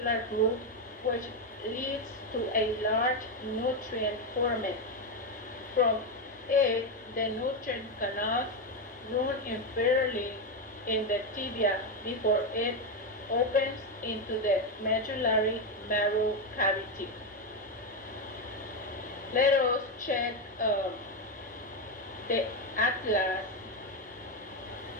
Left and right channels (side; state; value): both; normal; correlation 0.08